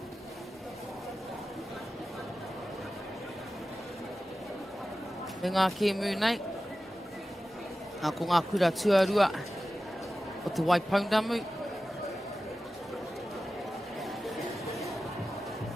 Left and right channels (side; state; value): both; normal; correlation 0.94